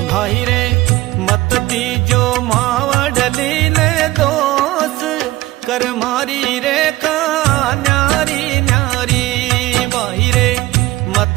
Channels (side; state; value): left; quieter; 18.0 dB